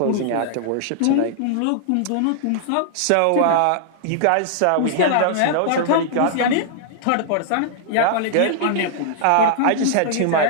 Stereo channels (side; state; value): both; different; correlation -0.01